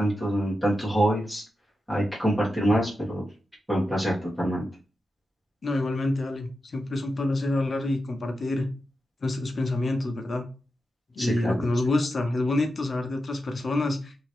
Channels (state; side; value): normal; both; correlation 0.89